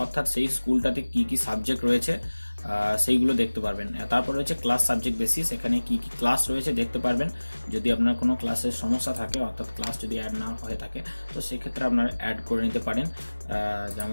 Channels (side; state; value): both; inverted; correlation -1.00